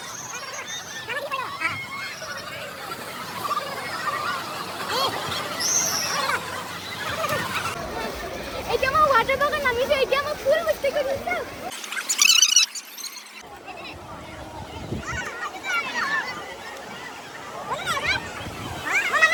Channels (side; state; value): both; identical; correlation 1.00